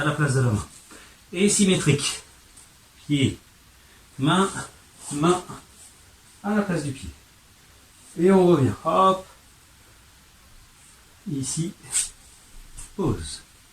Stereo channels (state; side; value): identical; both; correlation 1.00